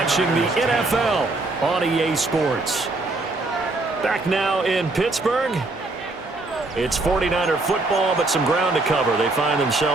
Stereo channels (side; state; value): left; quieter; 3.1 dB